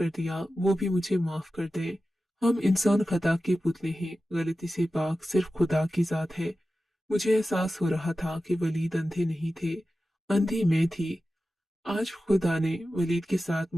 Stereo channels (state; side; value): normal; both; correlation 0.94